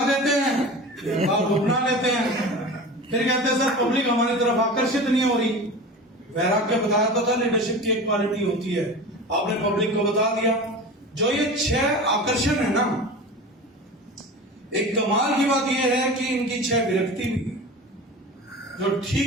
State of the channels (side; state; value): both; normal; correlation 0.33